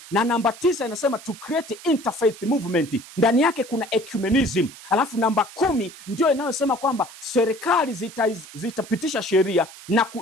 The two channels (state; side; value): noise; right; hiss, 17 dB below the sound